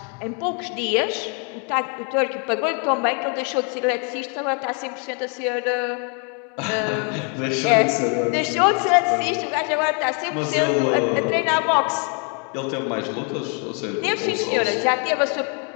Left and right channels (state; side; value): quieter; right; 38.3 dB